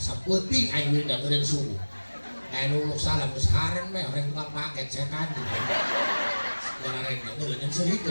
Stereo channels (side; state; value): both; inverted; correlation -1.00